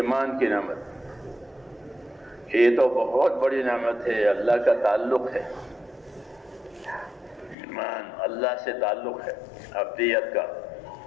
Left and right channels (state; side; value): drops out; right; at 7.6 s